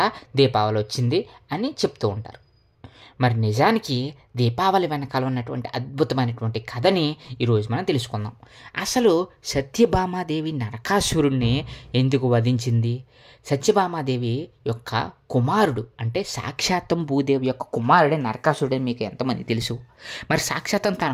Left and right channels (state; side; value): identical; both; correlation 1.00